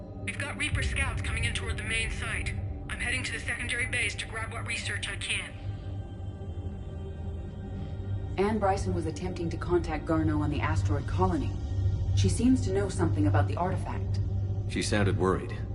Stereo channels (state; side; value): identical; both; correlation 1.00